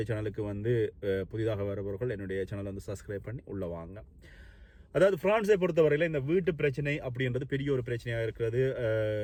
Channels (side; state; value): both; identical; correlation 1.00